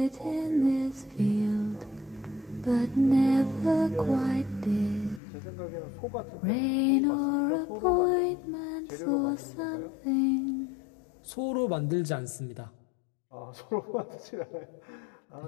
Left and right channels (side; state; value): right; drops out; at 5.2 s